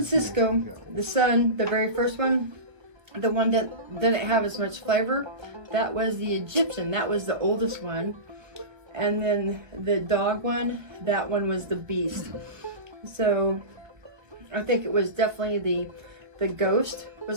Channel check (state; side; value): late; left; 1.3 ms